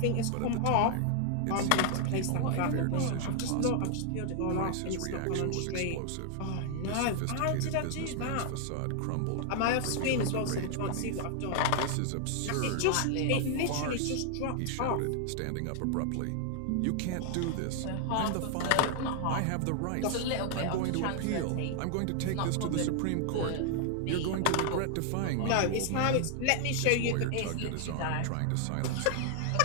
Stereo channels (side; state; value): both; different; correlation 0.00